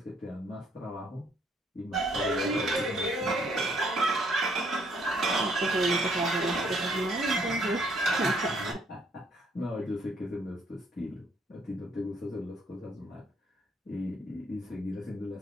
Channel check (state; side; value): normal; both; correlation 0.66